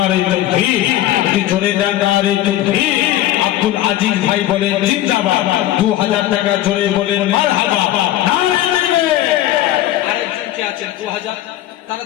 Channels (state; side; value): quieter; right; 14.0 dB